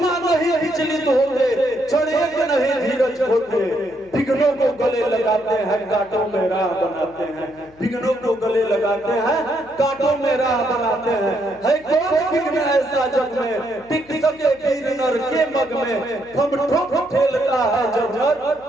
नहीं विचलित होते, चढ़ेक नहीं धीरज होते, विघ्नों को गले लगाते हैं, कांटों में राह बनाते हैं। विघ्नों को गले लगाते हैं, कांटों में राह बनाते हैं। है कौन विघ्न ऐसा जग में टिक सके वीर नर के मग में? हम ठोक ठेलता है जब नर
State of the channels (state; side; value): noise; left; hum, 28 dB below the sound